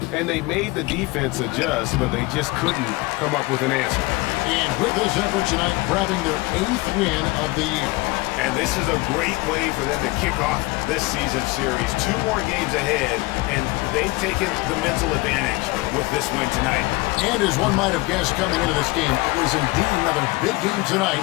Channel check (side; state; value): right; quieter; 22.7 dB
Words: And they made the defense adjust, but they just couldn't come up with an answer. And with this effort tonight, grabbing their 8th win of the year. And this is a great way for them to kick off this season series. 2 more games ahead, and they've taken the mental advantage with this win tonight. And as one might have guessed coming into this game, it was indeed another big game tonight